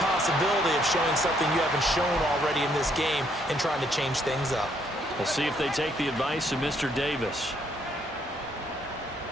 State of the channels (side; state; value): both; normal; correlation 0.70